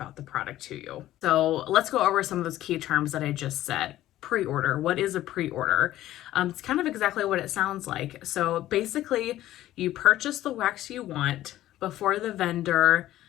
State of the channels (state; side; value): quieter; right; 14.2 dB